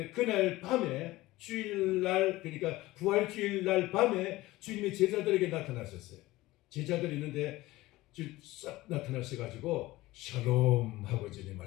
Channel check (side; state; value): right; quieter; 18.4 dB